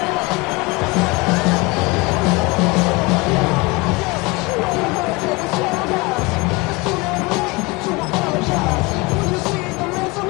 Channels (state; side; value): quieter; right; 24.9 dB